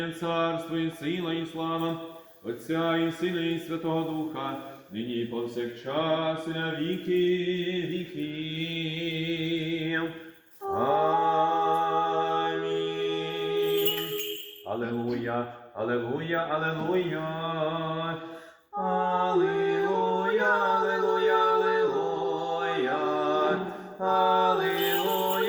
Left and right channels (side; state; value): both; identical; correlation 1.00